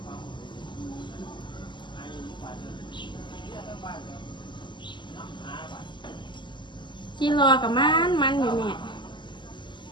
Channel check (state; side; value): late; right; 0.22 ms